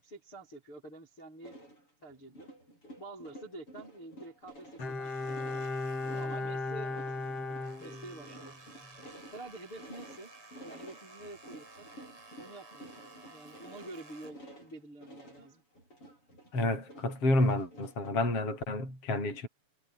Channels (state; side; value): late; right; 6.9 ms